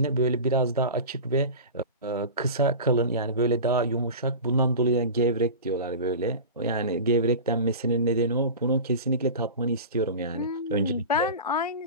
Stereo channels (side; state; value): both; inverted; correlation -0.31